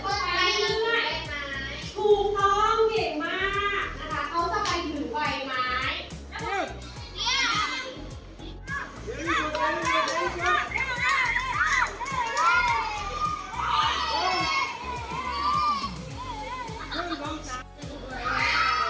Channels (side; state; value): both; identical; correlation 1.00